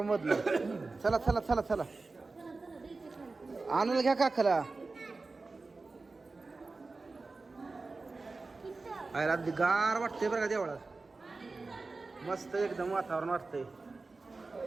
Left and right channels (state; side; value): quieter; left; 3.7 dB